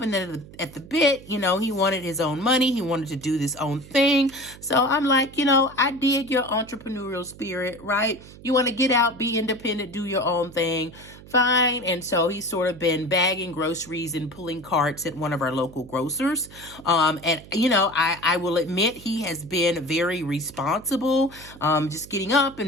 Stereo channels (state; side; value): noise; right; hum, 19 dB below the sound